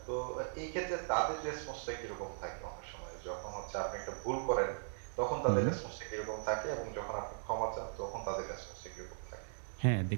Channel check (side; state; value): left; silent; digital silence